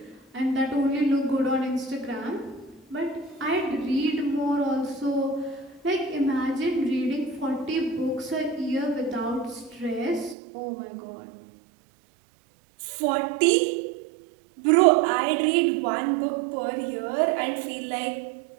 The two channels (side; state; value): left; drops out; at 10.4 s